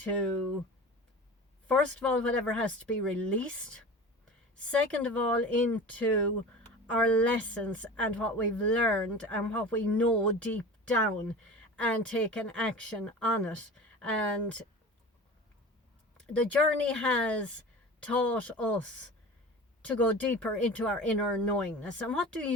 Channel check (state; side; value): normal; both; correlation 0.35